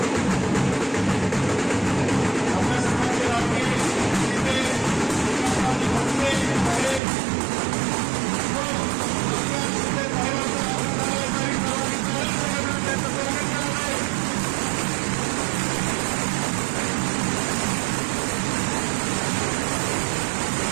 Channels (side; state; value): left; drops out; at 7.0 s